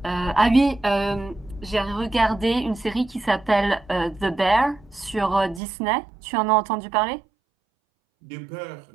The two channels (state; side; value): drops out; left; at 5.6 s